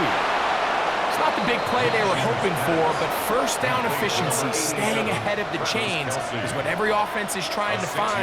It's not the big play they were hoping for, but first down efficiency, staying ahead of the chains, is what every offense is trying to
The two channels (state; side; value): identical; both; correlation 1.00